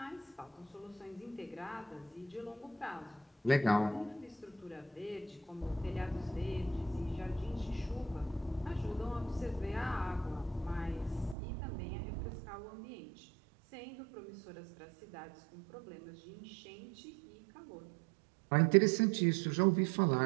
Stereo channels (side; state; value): left; drops out; at 11.4 s